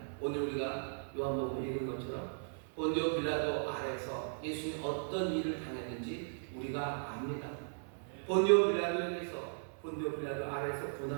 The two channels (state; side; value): silent; left; 53 dB below the other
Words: 오늘 우리가 요한복음 읽은 것처럼 본디오 빌라도 아래서 예수님이 어떤 일을 당했는지 우리가 압니다. 본디오 빌라도 아래서